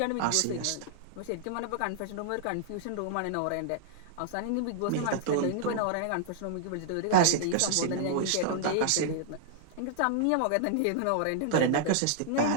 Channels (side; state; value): both; different; correlation -0.01